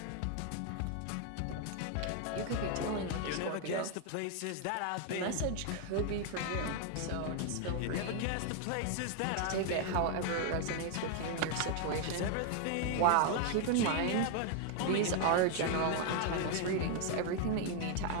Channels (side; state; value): both; different; correlation 0.00